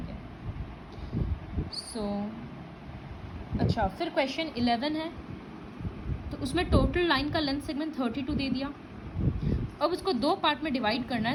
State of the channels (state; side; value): identical; both; correlation 1.00